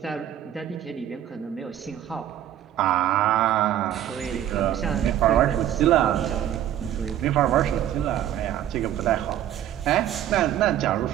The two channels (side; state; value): left; quieter; 11.4 dB